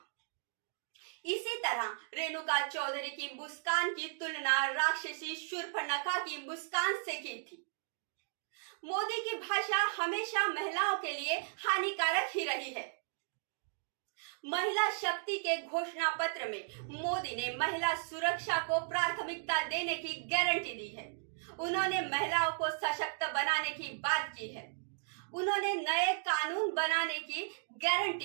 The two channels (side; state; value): left; silent; digital silence